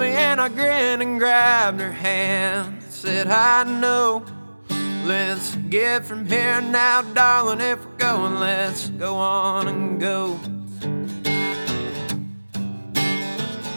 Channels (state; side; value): inverted; both; correlation -1.00